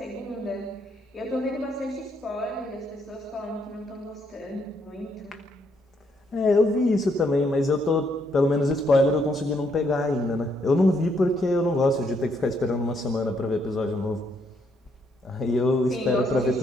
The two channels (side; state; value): both; normal; correlation 0.73